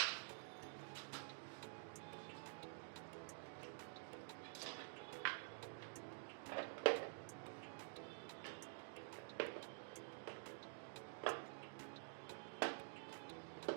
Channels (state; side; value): silent; left; digital silence